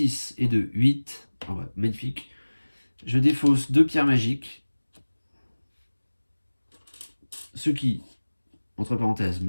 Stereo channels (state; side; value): inverted; both; correlation -1.00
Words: et 2, 8. Oh, ouais, magnifique. Je défausse 2 pierres magiques. Ce qui, entre parenthèses,